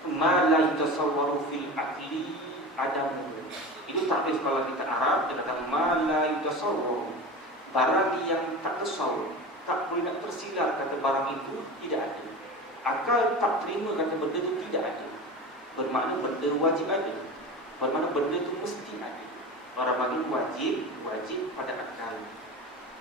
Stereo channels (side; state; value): both; normal; correlation 0.30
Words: Ma la yatasawwaru fil aqli adamu. Itu takrif kalau kita Arab, dikatakan ma la yatasawwaru. Barang yang tak tasawwur, tak boleh nak tersilar kata barang itu tidak ada. Akal tak terima kata benda itu tidak ada. Bermakna benda wajib ada. Bermakna benda itu mesti ada. Orang bagi wajib pada akal.